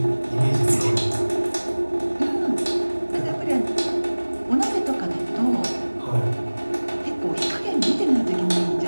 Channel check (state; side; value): inverted; both; correlation -1.00